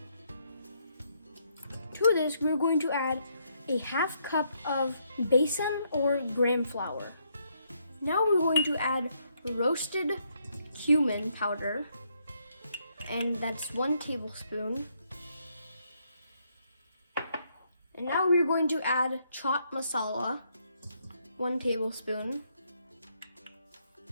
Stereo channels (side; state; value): both; inverted; correlation -0.74